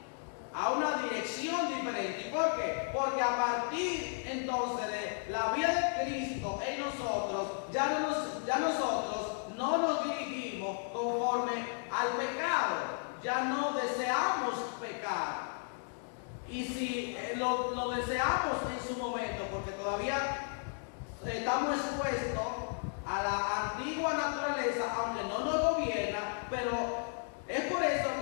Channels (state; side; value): silent; right; 55 dB below the other